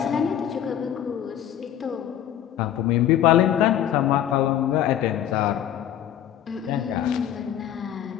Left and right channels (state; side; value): quieter; right; 10.7 dB